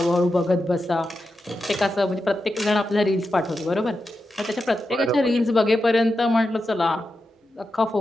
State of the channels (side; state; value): both; normal; correlation 0.89